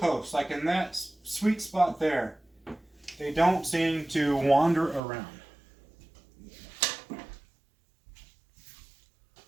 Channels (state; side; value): drops out; left; at 5.0 s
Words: like in that sweet spot there, they don't seem to wander around. Of